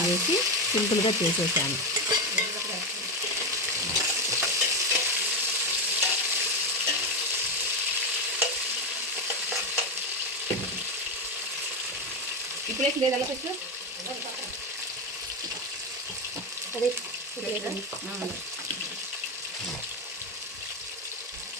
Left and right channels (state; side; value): normal; both; correlation 0.12